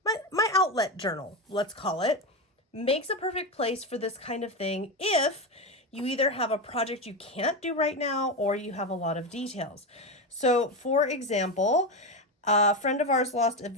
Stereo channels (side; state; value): both; normal; correlation 0.15